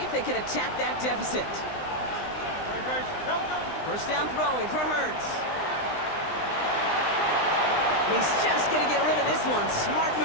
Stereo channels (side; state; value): right; late; 20 ms